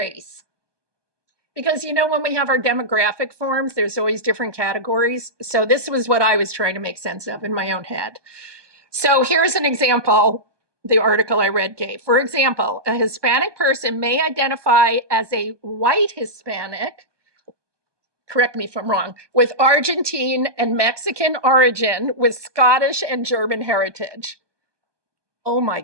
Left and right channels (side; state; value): left; late; 1.2 ms